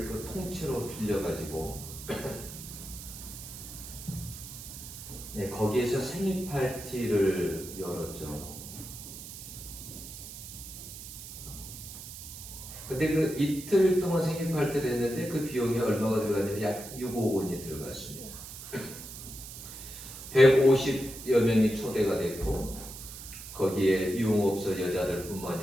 그 통째로 빌려가지고 네, 거기에서 생일 파티를 열었죠. 근데 그 이틀 동안 생일 파티를 했는데 그 비용이 얼마가 들어갔냐면 약 6억 원이 들어갔습니다. 150여 명이 초대가 됐고 거기에 유흥업소 여자들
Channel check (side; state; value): right; noise; hiss, 12 dB below the sound